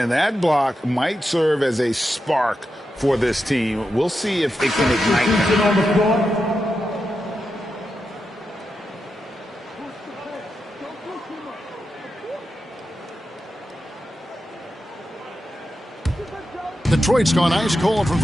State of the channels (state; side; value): normal; both; correlation 0.88